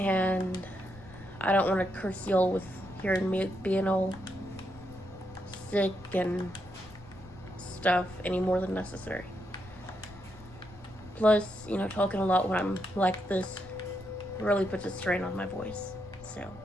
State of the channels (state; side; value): noise; left; rumble, 20 dB below the sound